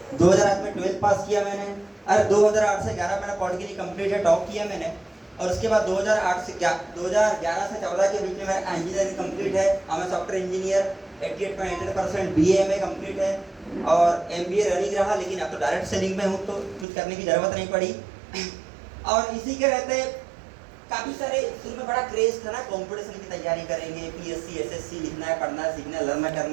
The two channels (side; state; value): left; drops out; at 16.9 s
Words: 2008 में 12 पास किया मैंने। और 2008 से 11 मेरा पॉलिटिकली कंप्लीट है, टॉप किया मैंने। और उसके बाद 2011 से 14 के बीच में मेरा इंजीनियरिंग कंप्लीट है। मैं सॉफ्टवेयर इंजीनियर, 88.88% BA कंप्लीट है और MBA रनिंग रहा। लेकिन अब तो डायरेक्ट सेलिंग में हूँ तो कुछ करने की जरूरत नहीं पड़ी। और इसी के रहते काफी सारे शुरू में बड़ा क्रेज था ना, कंपटीशन की तैयारी करेंगे, PSC SSC लिखना है, पढ़ना है, सीखना है, लर्न